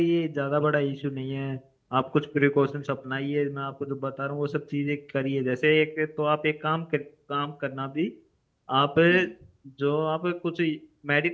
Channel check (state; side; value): identical; both; correlation 1.00